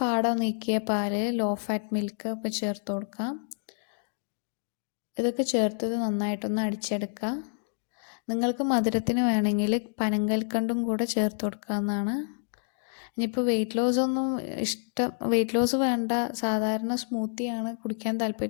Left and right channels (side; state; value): right; silent; digital silence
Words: പാട നീക്കിയ പാല്, ലോ ഫാറ്റ് മിൽക്ക് ഒക്കെ ചേർത്ത് കൊടുക്കാം. ഇതൊക്കെ ചേർത്തത് നന്നായിട്ടൊന്ന് അടിച്ചെടുക്കുക. നിങ്ങൾക്ക് മധുരത്തിന് വേണമെങ്കിൽ പനങ്കൽക്കണ്ടും കൂടെ ചേർത്ത് കൊടുക്കാവുന്നതാണ്. ഇനിയിപ്പോൾ വെയിറ്റ് ലോസ് വേണ്ട, സാധാരണ സ്മൂത്തിയാണ് കുടിക്കാൻ